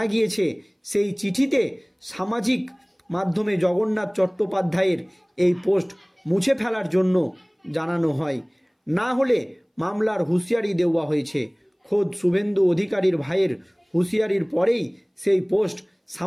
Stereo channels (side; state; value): both; identical; correlation 1.00